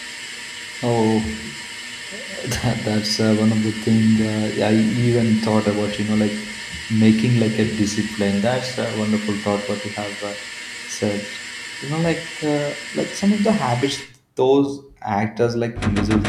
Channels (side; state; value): both; identical; correlation 1.00